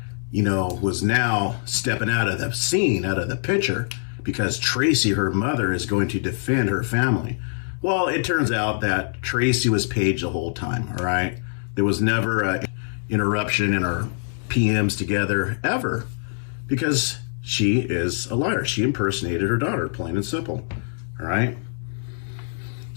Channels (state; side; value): silent; right; digital silence